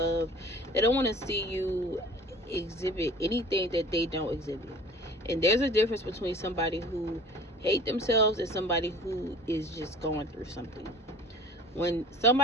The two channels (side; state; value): both; normal; correlation 0.44